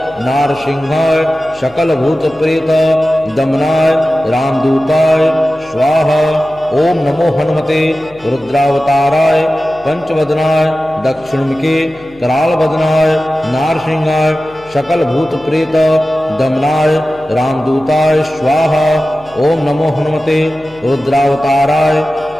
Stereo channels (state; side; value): noise; left; hum, 26 dB below the sound